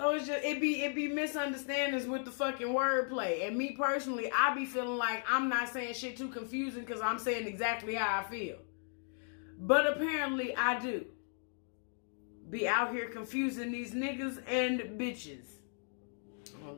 it's just it be misunderstandings with the fucking wordplay. And me personally, I be feeling like I'm not saying shit too confusing because I'm saying exactly how I feel. But apparently I do. Be out here confusing these niggas and bitches. I don't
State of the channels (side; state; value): right; silent; 54 dB below the other